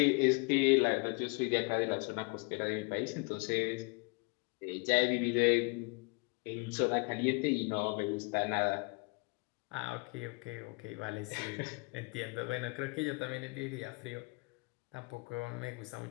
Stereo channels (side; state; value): right; quieter; 30.6 dB